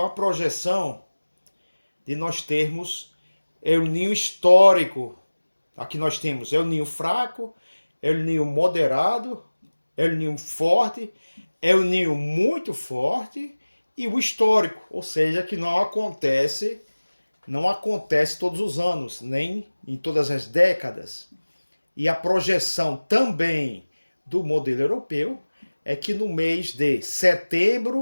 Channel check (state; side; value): inverted; both; correlation -1.00